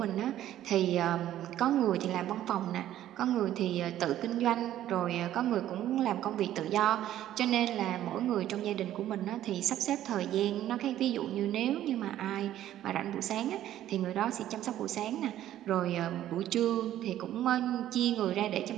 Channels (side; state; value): left; quieter; 12.5 dB